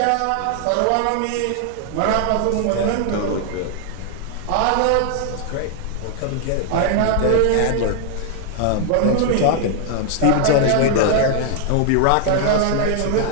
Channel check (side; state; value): both; different; correlation 0.00